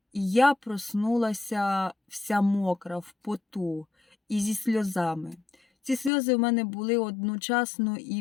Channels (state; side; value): drops out; right; at 6.1 s